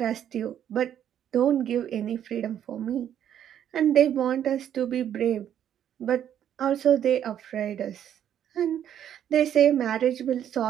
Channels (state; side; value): quieter; left; 10.0 dB